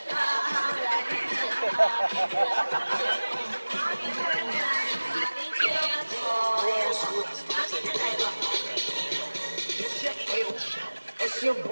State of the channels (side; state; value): both; inverted; correlation -1.00